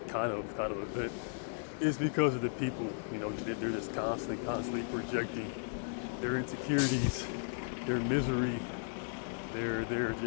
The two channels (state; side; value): silent; right; digital silence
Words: kind of event is because of the people. They're just constantly projecting their insecurities, their misery, they're